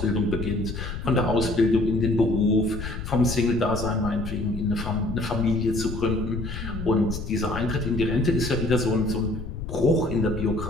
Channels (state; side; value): noise; left; rumble, 7 dB below the sound